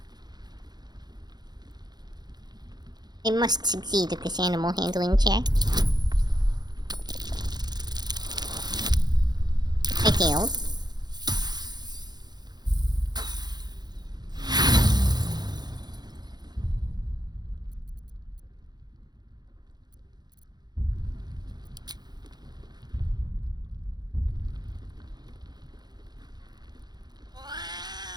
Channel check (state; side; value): late; left; 0.20 ms